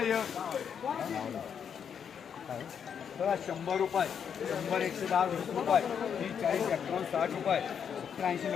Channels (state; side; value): quieter; right; 7.6 dB